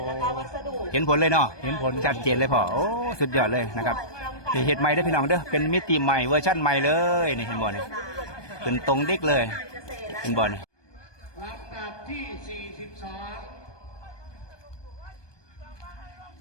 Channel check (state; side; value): late; right; 1.2 ms